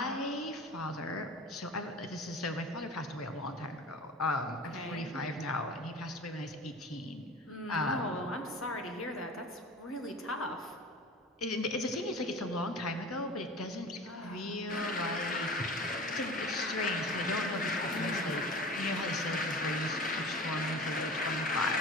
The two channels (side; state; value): both; normal; correlation 0.37